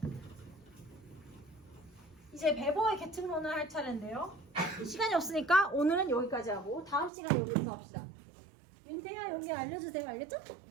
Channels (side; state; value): left; drops out; at 7.1 s